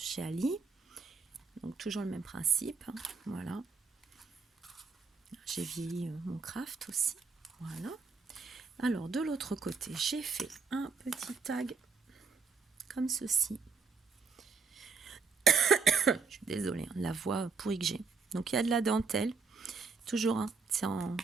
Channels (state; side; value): quieter; left; 4.9 dB